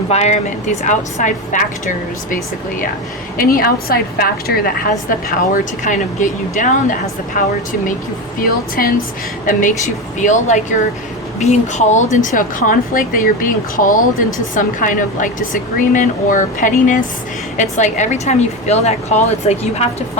these outside factors, basically, yeah. Any outside factor that has the power to kind of get you down, that has the power to make you feel tense, that makes you feel like you're being called into a conflict, that you're being called into some kind of like disagreement or pettiness. It's like every time you feel that call, it's like you have to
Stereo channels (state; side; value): normal; both; correlation 0.19